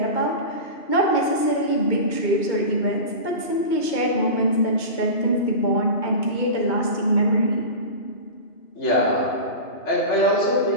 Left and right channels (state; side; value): late; right; 2.2 ms